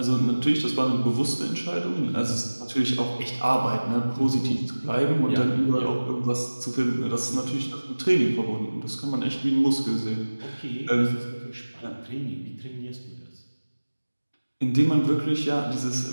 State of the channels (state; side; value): inverted; both; correlation -1.00